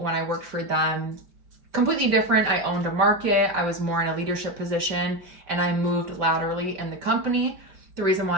I worked for them, completely different. I owned a market. I was more in a leadership position and I moved laterally in the company. The reason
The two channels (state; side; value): late; left; 5.1 ms